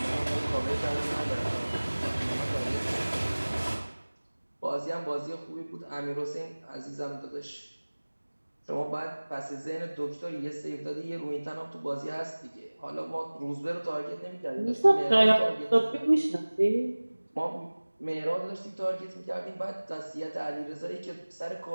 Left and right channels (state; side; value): inverted; both; correlation -1.00